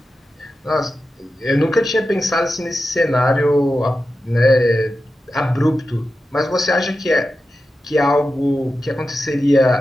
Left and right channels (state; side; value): normal; both; correlation 0.91